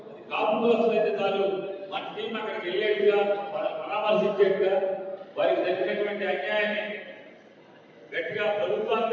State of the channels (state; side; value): identical; both; correlation 1.00